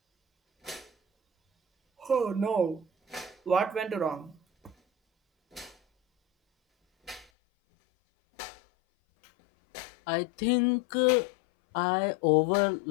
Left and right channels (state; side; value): drops out; right; at 7.2 s